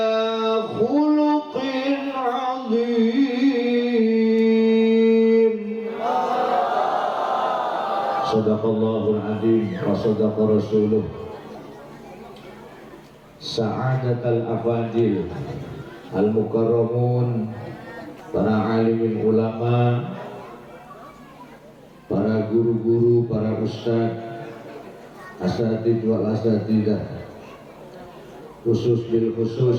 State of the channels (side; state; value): both; identical; correlation 1.00